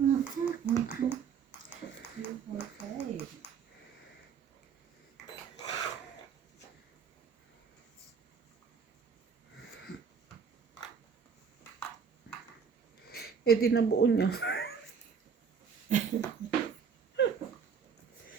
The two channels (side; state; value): left; quieter; 6.6 dB